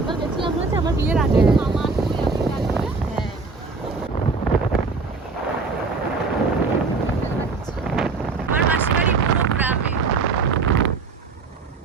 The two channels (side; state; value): left; quieter; 4.2 dB